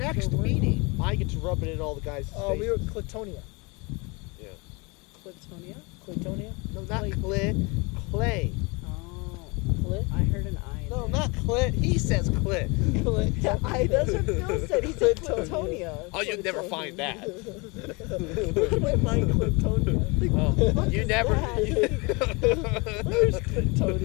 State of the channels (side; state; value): right; quieter; 28.3 dB